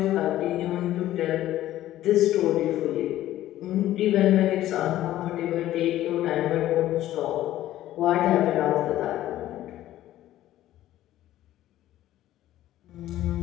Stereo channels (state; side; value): quieter; right; 13.8 dB